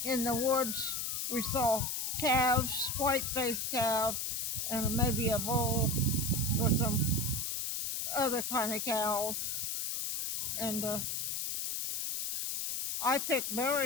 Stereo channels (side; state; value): left; noise; hiss, 2 dB below the sound